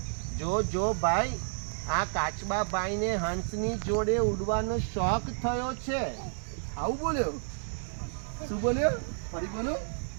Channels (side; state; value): left; silent; 57 dB below the other